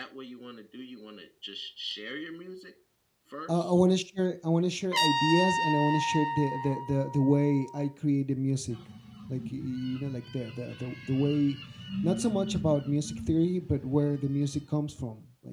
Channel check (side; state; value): both; identical; correlation 1.00